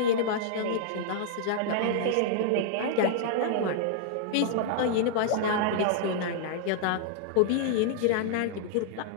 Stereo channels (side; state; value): both; different; correlation -0.01